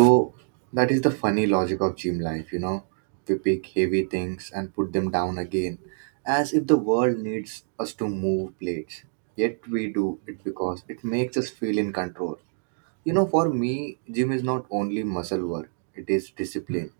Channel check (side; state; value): left; silent; digital silence